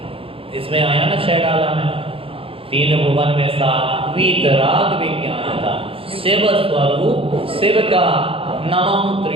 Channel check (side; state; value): left; late; 0.27 ms